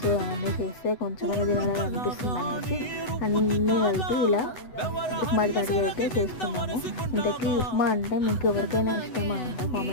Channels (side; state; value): right; late; 8.0 ms